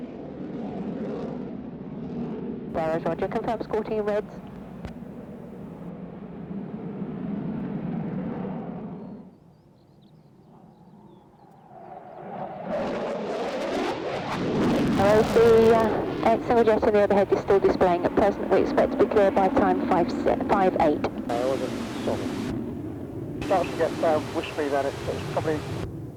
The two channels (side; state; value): both; identical; correlation 1.00